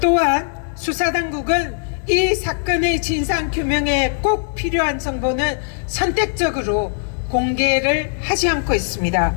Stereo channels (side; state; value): right; silent; 64 dB below the other